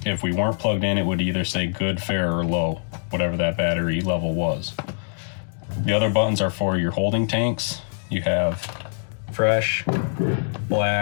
If we weren't plugged in, it would either say good, fair, or low, whatever that battery level was. The other buttons are for your holding tanks. You have fresh,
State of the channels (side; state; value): right; silent; digital silence